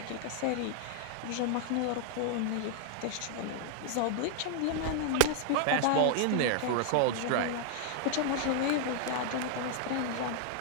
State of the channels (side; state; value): both; different; correlation 0.00